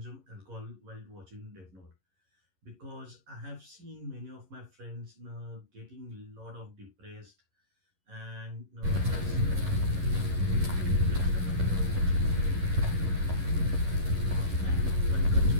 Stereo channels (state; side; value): late; left; 11 ms